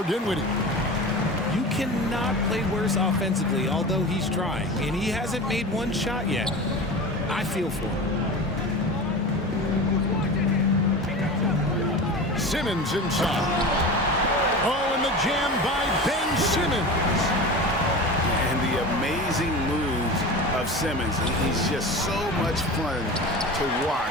Dinwiddie. You cannot play worse offensively, although he's trying, and he hasn't made one shot yet. I feel for him. Simmons inside. Oh, and the jam by Ben Simmons. And the amazing moves of Simmons. He's just so much fun to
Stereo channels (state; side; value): normal; both; correlation 0.31